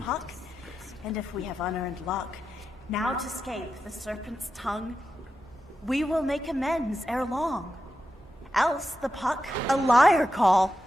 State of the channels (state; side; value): normal; both; correlation 0.89